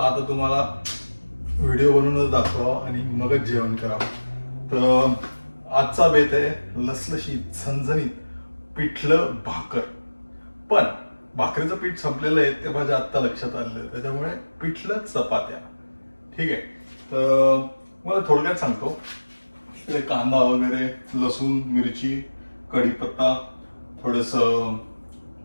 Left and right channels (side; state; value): both; inverted; correlation -1.00